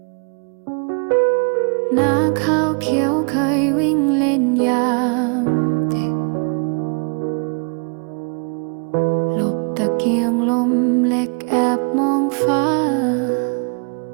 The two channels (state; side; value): quieter; left; 39.5 dB